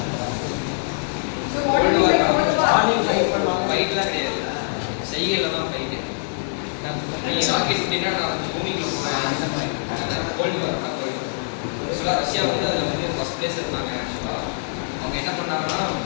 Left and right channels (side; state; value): right; silent; digital silence